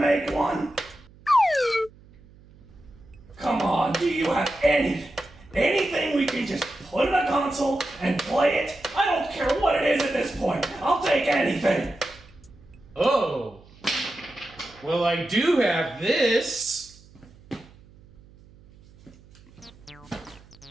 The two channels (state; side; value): noise; right; hum, 25 dB below the sound